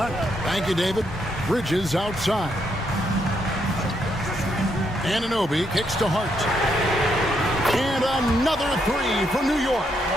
Thank you, David. Bridges outside. Anunoby kicks to Hart. And another 3 for New York.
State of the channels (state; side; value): normal; both; correlation 0.77